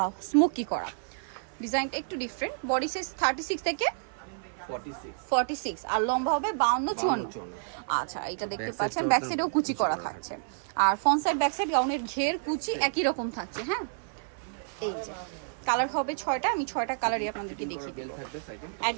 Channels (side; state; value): left; silent; 58 dB below the other